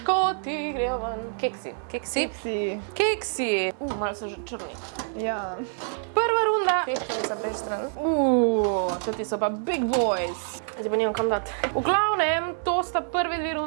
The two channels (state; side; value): silent; left; digital silence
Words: grejo ven. Keksi. Keksi. Keksi. Keksi. Malo so že črni. Ja. Prva runda. Peščenica brez stran. Toti so pa big boys. Zdaj pa nimam kam dati. V glavnem, to sta prve 2